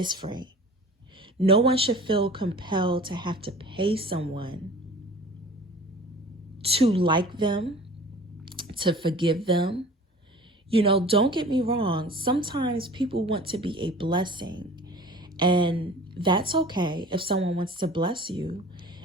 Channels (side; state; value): both; normal; correlation 0.43